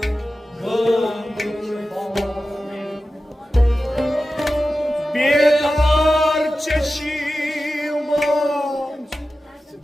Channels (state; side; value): normal; both; correlation 0.94